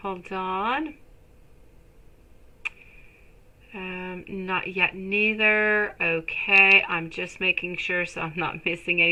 Hold on. Not yet neither. Okay, I'm just making sure so I'm not missing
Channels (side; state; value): both; identical; correlation 1.00